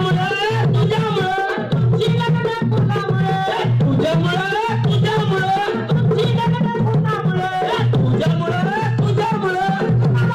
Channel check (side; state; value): both; identical; correlation 1.00